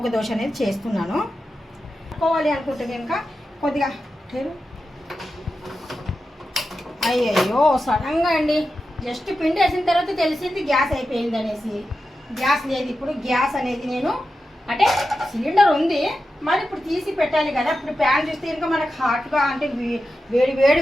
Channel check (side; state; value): both; normal; correlation 0.91